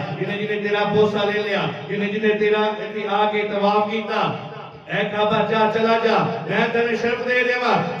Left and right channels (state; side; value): identical; both; correlation 1.00